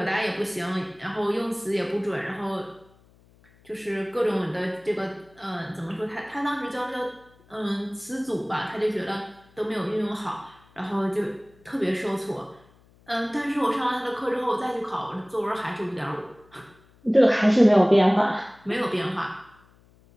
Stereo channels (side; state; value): left; noise; hum, 29 dB below the sound